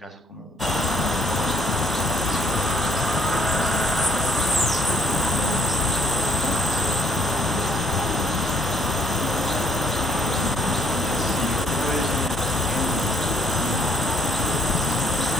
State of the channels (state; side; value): normal; both; correlation 0.66